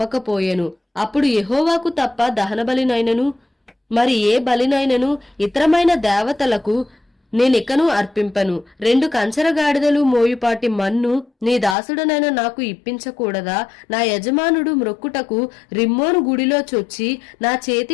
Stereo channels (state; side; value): drops out; right; at 11.8 s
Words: అప్పుడు యెహోవాకు తప్ప దహన బలినైనను మరి ఏ బలినైనను ఇతరమైన దేవతలకు నేనికను అర్పింపను. 2 కంచరగాడిదలు మోయుపాటి మన్ను నీ దాసుడనైన నాకు ఇప్పించకూడదా? నా యజమానుడు మ్రొక్కుటకు రిమ్మోను గుడిలో చొచ్చి నా